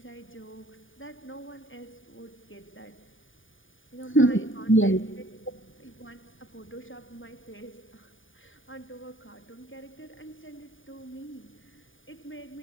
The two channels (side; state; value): right; late; 0.57 ms